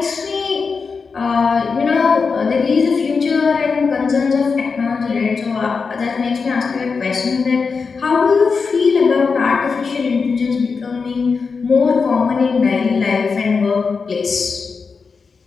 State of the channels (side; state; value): right; quieter; 5.0 dB